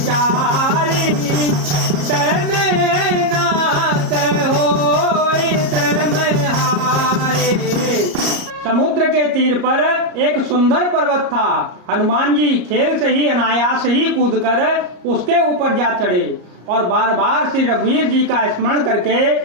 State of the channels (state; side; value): late; left; 33 ms